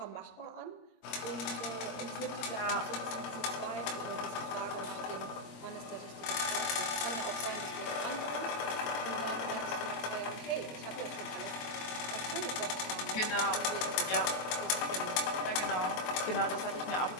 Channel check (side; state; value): right; late; 23 ms